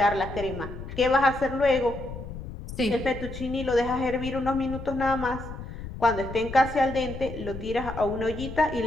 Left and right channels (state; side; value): noise; left; rumble, 10 dB below the sound